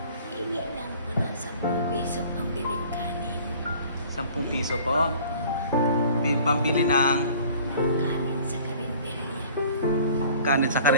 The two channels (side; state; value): both; inverted; correlation -0.50